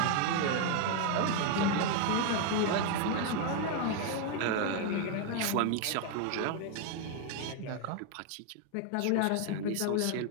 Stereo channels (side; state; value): both; different; correlation 0.01